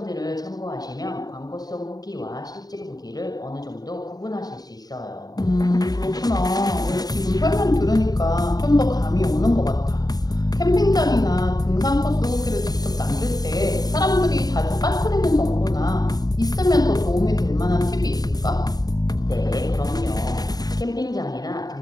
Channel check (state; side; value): late; right; 0.19 ms